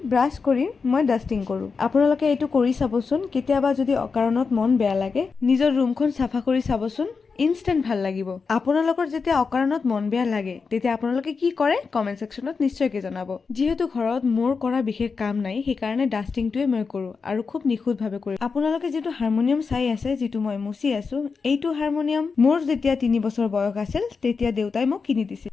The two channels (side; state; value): right; quieter; 5.0 dB